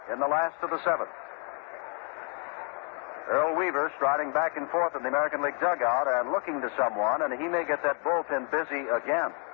in the last of the seventh. Earl Weaver striding back and forth in the American League dugout and looking to someone, and he may get that bullpen busy again.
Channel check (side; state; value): right; quieter; 35.8 dB